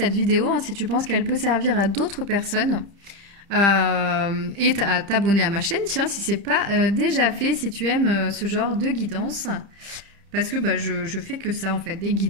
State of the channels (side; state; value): left; late; 30 ms